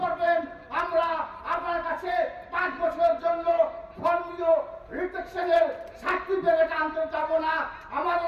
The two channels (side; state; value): both; identical; correlation 1.00